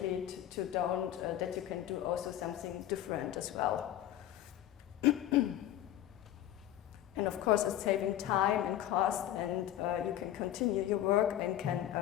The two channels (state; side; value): quieter; right; 12.5 dB